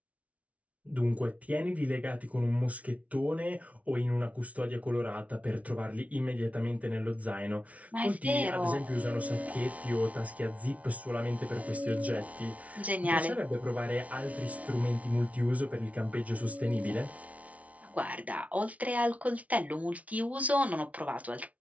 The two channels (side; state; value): left; late; 0.067 ms